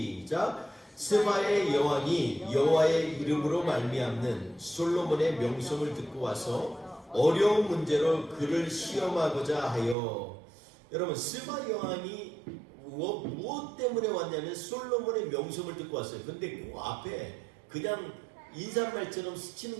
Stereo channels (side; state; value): left; drops out; at 10.0 s